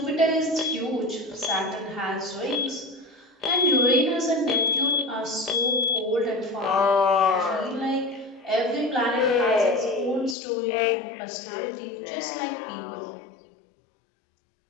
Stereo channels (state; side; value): drops out; right; at 10.4 s